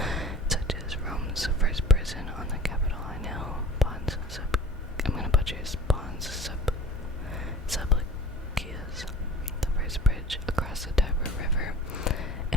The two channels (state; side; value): normal; both; correlation 0.43